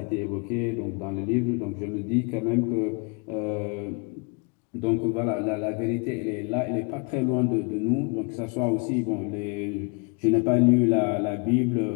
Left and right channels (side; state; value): right; quieter; 33.7 dB